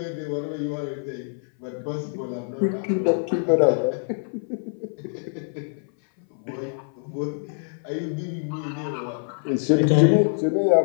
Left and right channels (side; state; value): right; silent; 59 dB below the other